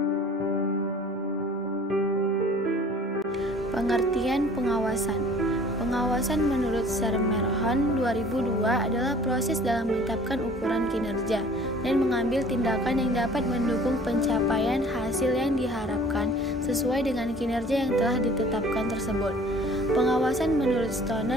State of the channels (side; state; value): both; normal; correlation 0.50